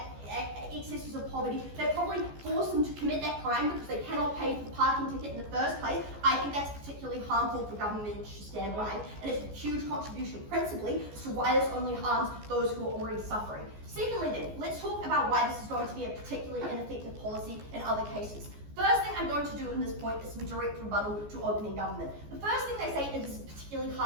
excesses of poverty, they probably force them to commit that crime because they cannot pay for the parking ticket in the first place. I think that's particularly harmful for government to stand by, and it's a huge contribution principally as to why this only harms those who are already suffering. Secondly then, let's talk about why this is going to be a particularly ineffective policy in other cases. First thing I'm going to do in this point is some direct rebuttal to opening government. The first thing they say is it's particularly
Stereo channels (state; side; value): late; left; 14 ms